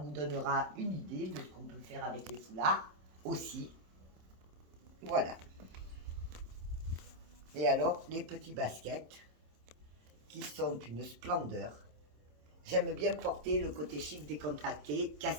donnera une idée de ce qu'on peut faire avec les foulards aussi. Voilà. Et alors, les petits baskets, qui sont une splendeur. J'aime bien porter le côté chic décontracté,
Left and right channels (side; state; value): left; late; 27 ms